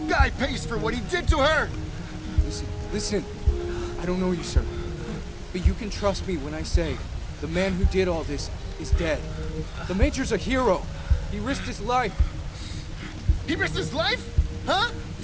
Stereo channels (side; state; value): both; identical; correlation 1.00